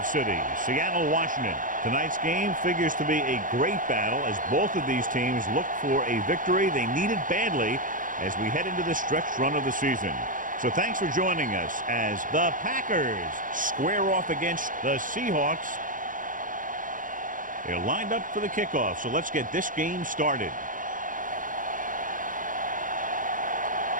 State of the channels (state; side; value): late; left; 0.39 ms